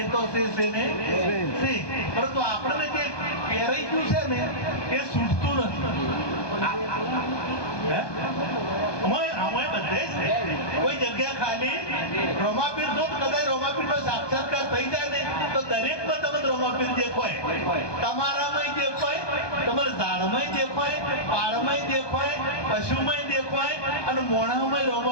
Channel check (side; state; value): right; late; 1.2 ms